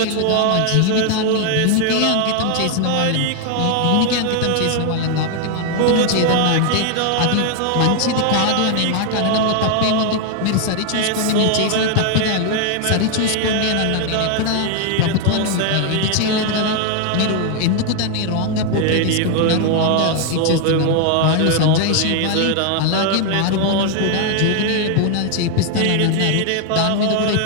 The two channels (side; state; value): both; different; correlation 0.00